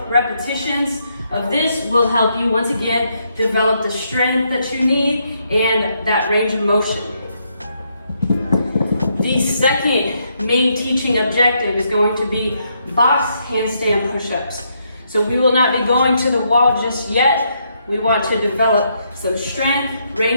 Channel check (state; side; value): inverted; both; correlation -0.76